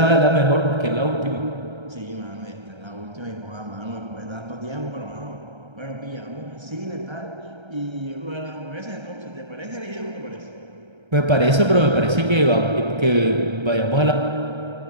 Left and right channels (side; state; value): left; late; 1.3 ms